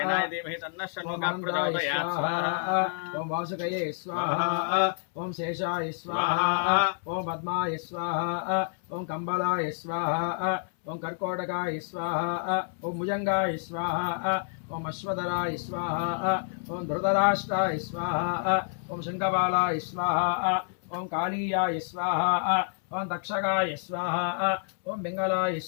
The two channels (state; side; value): silent; right; 59 dB below the other